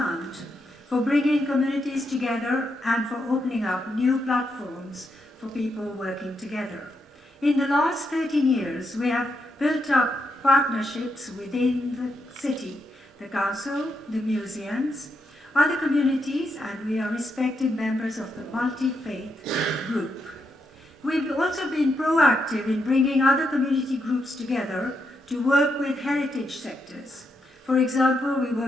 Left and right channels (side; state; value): both; normal; correlation 0.81